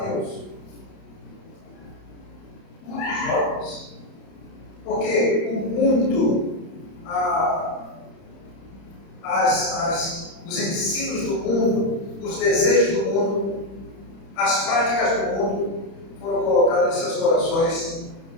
Muitos jovens. Porque o mundo, os ensinos do mundo, os desejos do mundo, as práticas do mundo foram colocadas em seus corações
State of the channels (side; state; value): right; late; 31 ms